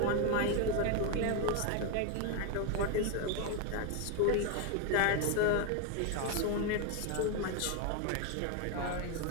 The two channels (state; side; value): different; both; correlation 0.02